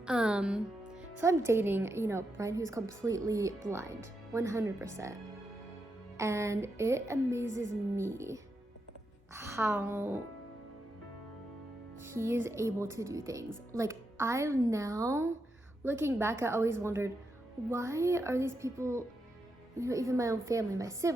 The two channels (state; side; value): normal; both; correlation 0.84